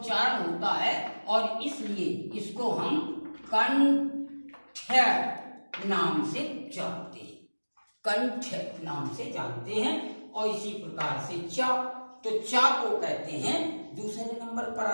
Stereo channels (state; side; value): inverted; both; correlation -1.00